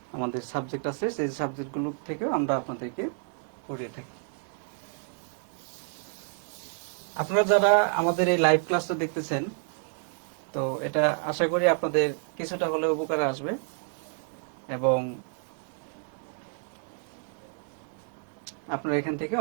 আমাদের সাবজেক্ট আছে, সেই সাবজেক্টগুলো থেকেও আমরা আপনাদেরকে পড়িয়ে থাকি। আপনারা যারা আমাদের এই লাইভ ক্লাসটা দেখতেছেন, তো এটা আশা করি আপনাদের কিছুটা হলেও উপকারে আসবে এবং আপনারা এখান থেকে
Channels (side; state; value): left; silent; 58 dB below the other